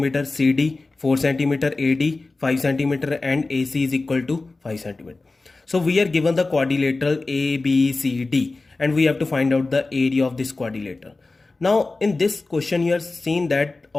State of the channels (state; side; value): quieter; right; 3.4 dB